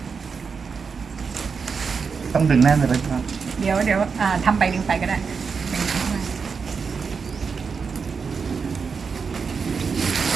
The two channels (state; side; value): quieter; left; 5.5 dB